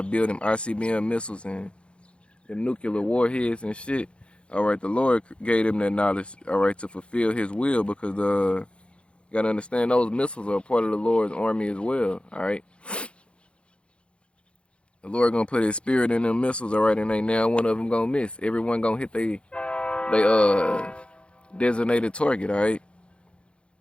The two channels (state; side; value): late; right; 0.058 ms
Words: build them ICBM missiles and them nuclear warheads and shit. All right, the Lord gave them that knowledge, all right, to fulfill his will, because you gotta understand those missiles are part of the Lord's army as well, all right? The Lord gonna put his spirit in them missiles, all right, and ain't now one of them gonna miss. Everyone gonna hit they designated target, all right?